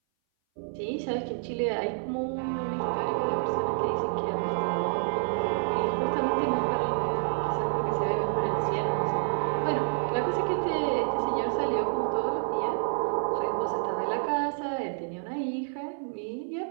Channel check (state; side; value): silent; left; 58 dB below the other